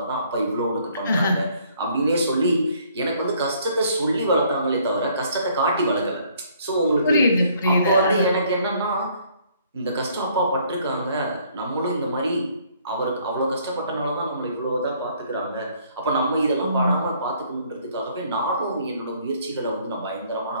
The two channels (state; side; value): inverted; both; correlation -0.63